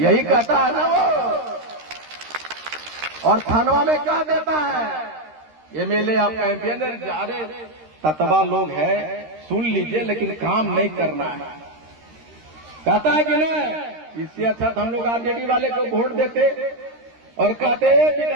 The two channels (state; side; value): late; left; 13 ms